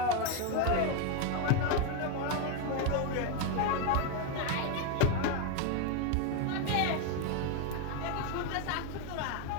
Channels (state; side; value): different; both; correlation 0.01